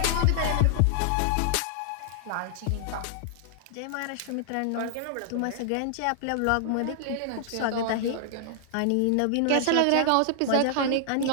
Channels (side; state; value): both; different; correlation -0.01